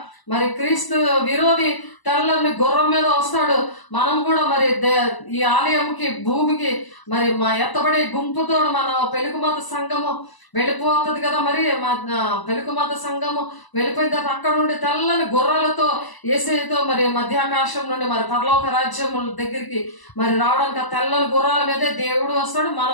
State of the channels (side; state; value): right; late; 1.0 ms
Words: మరి క్రీస్తు విరోధి తెల్లని గుర్రం మీద వస్తాడు. మనం కూడా మరి ఈ ఆలయంకి భూమికి మరి మా ఎత్తబడే గుంపుతో మన పెలుగుమత సంఘము వెళ్ళిపోతుంది కదా. మరి మా పెలుగుమత సంఘము వెళ్ళిపోయిన తర్వాత అక్కడ నుండి తెల్లని గుర్రాలతో యేసేతో మరి మధ్యాకాశం నుండి మరి పరలోక రాజ్యం దగ్గరికి మరి రావడానికి ఆ తెల్లని గుర్రాల మీదే దేవుడు వస్తాడు,